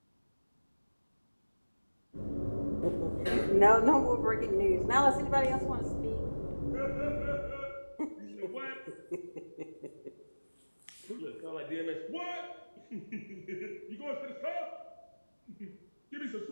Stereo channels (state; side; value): inverted; both; correlation -1.00